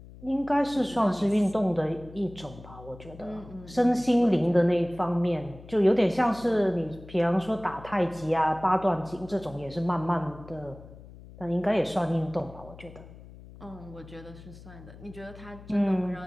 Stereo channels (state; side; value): noise; left; hum, 18 dB below the sound